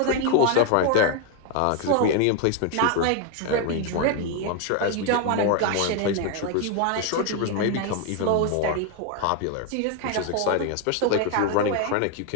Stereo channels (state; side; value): different; both; correlation 0.01